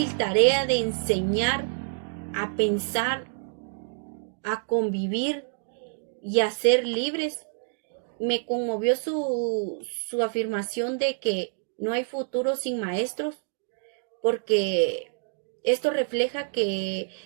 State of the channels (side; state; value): left; silent; digital silence